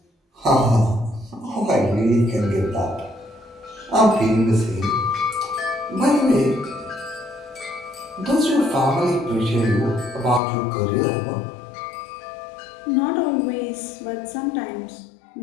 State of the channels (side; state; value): right; drops out; at 10.4 s